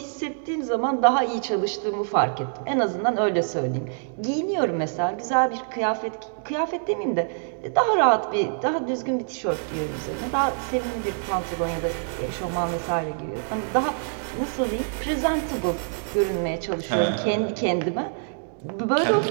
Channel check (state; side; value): silent; left; digital silence